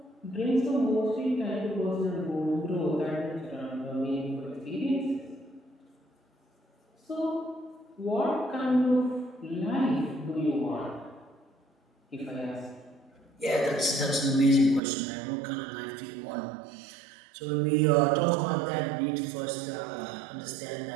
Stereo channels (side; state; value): left; drops out; at 14.8 s